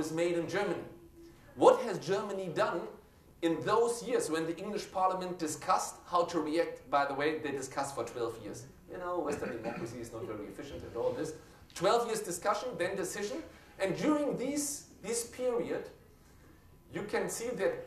made in Germany. What has Germany done in those years when the English Parliament discussed how to react? By the way, they discussed for 12 years. You know, Western democracy is not very efficient at all this. 12 years discussion, then decision. And during this period, you can see that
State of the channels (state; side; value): identical; both; correlation 1.00